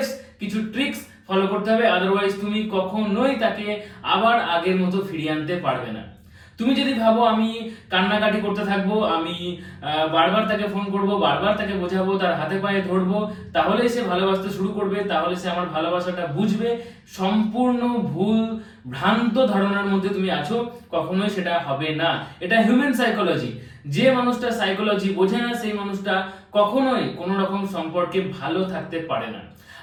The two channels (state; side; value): identical; both; correlation 1.00